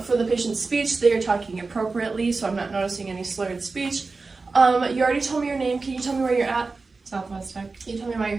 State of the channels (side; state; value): left; quieter; 3.9 dB